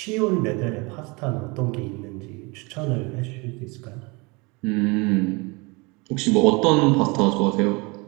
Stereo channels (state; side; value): quieter; left; 27.5 dB